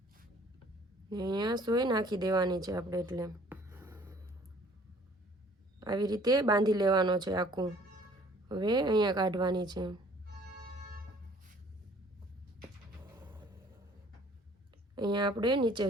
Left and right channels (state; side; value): normal; both; correlation 0.55